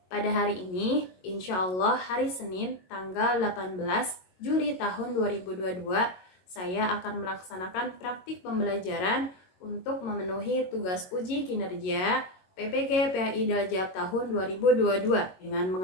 Pada hari ini, insya Allah hari Senin tanggal 18 Juli tahun 2022, saya akan melaksanakan praktik pembelajaran untuk memenuhi tugas uji kinerja PPG PAI Dajab tahun 2022 dengan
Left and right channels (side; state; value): right; late; 22 ms